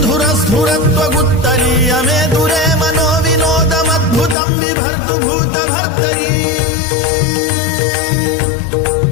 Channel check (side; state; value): right; drops out; at 4.4 s